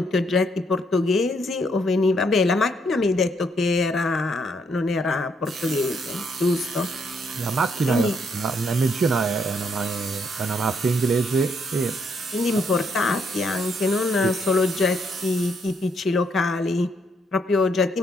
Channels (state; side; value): normal; both; correlation 0.73